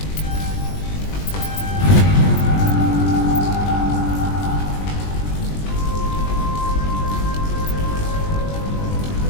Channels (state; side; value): late; right; 20 ms